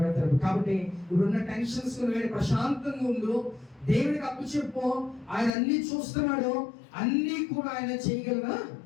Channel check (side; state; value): right; drops out; at 5.5 s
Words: కాబట్టి ఇప్పుడున్న టెన్షన్స్ ప్రశాంతంగా ఉండు, దేవుడికి అప్పు చెప్పు. ఆయన అన్ని చూస్తున్నాడు, అన్ని కూడా ఆయన చేయగలగా